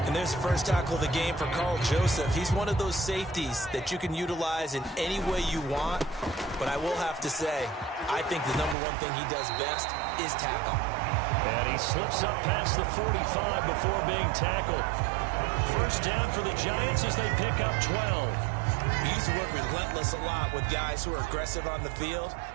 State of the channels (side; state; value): left; drops out; at 8.8 s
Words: And there's the first tackle of the game for Carl Joseph. He's one of those safeties that you can utilize in any way you want. But I will have to say, I think the number one thing he does best is tackle. And he slips up past the 45 before being tackled. First down for the Giants as they pick up 12. We use the word relentless a lot with guys who are aggressive on the field.